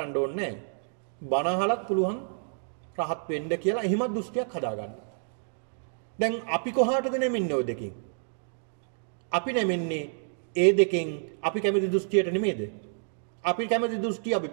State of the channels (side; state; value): left; silent; digital silence